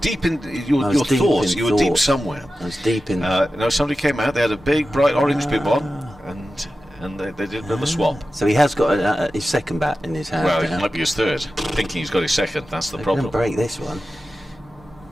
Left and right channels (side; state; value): both; normal; correlation 0.93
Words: in your thoughts. You were deep somewhere. I was deep in. No, somebody came out. They had a big bright orange bib on, and and they did another swap. So he has got his second bat in his hand. Well, it now. might be his third. Thinking he's got his second. That's the They're problem. going to break this one.